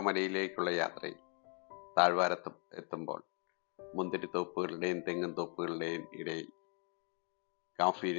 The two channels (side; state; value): right; quieter; 39.6 dB